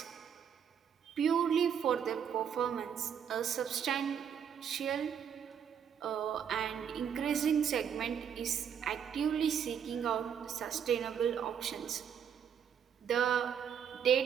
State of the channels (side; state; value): left; quieter; 8.1 dB